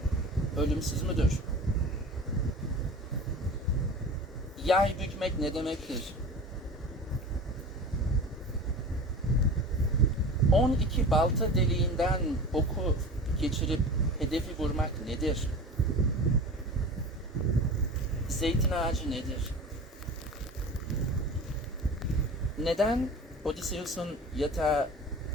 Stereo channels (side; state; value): both; normal; correlation 0.36